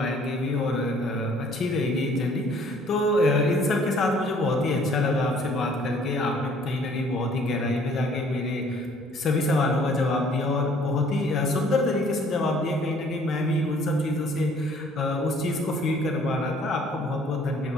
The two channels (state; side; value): normal; both; correlation 0.58